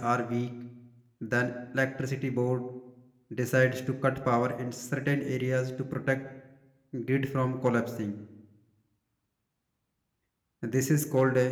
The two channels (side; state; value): both; identical; correlation 1.00